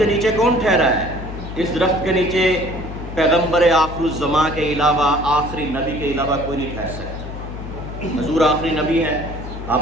نیچے کون ٹھہرا ہے؟ اس درخت کے نیچے پیغمبر آخر الزماں کے علاوہ، آخری نبی کے علاوہ کوئی نہیں ٹھہر سکتا۔ حضور آخری نبی ہیں، آپ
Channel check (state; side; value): noise; left; hum, 9 dB below the sound